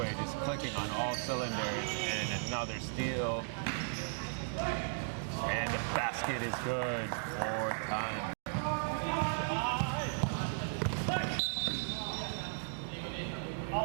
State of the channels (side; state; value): left; silent; digital silence